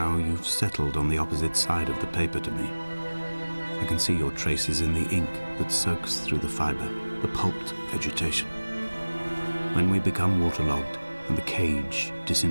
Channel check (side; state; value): both; inverted; correlation -1.00